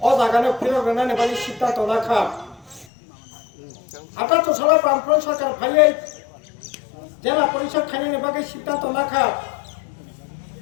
अ जागानो फिरगोनानै बायदि सिद्धान्त लाखा 78 सालाव बामफ्रन्ट सरकार फायै জেলা পরিষদ খাইनायनि बागै सिद्धान्त लाखा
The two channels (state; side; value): drops out; right; at 2.9 s